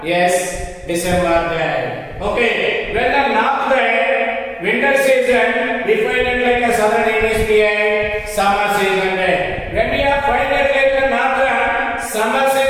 yes, December there. Okay, when the north there, winter season, we find it like a southern hemisphere, summer season there. When we are find it like the northern summer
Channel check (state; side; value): identical; both; correlation 1.00